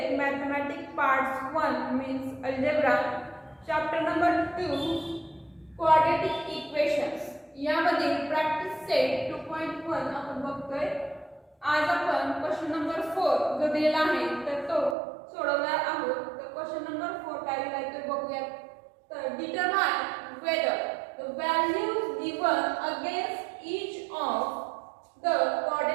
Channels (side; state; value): left; drops out; at 15.0 s